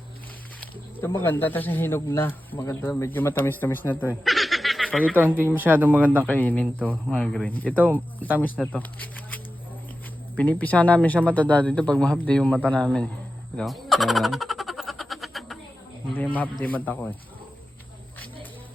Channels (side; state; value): both; normal; correlation 0.92